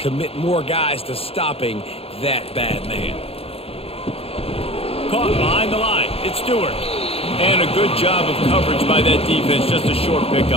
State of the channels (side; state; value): right; late; 0.28 ms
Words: more guys to stopping that bad man. Caught behind the line. It's Stewart. And a good job of coverage by that defense, just a short